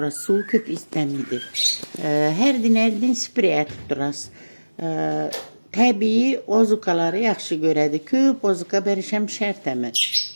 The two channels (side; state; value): both; inverted; correlation -1.00